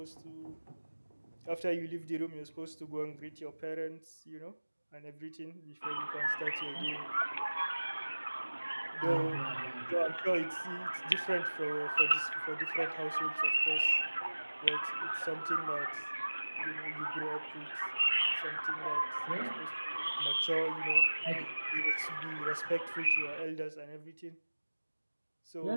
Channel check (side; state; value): both; inverted; correlation -1.00